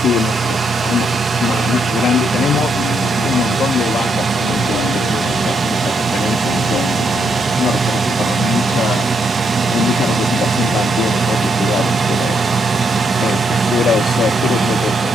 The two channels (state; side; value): normal; both; correlation 0.77